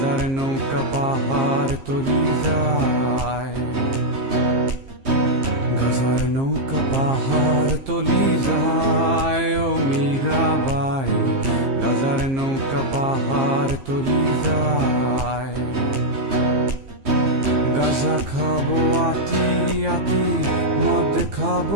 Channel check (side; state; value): left; late; 15 ms